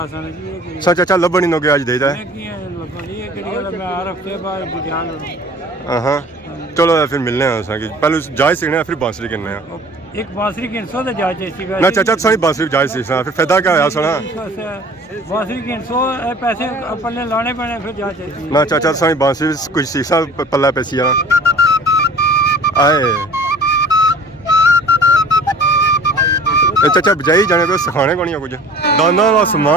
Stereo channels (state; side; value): normal; both; correlation 0.46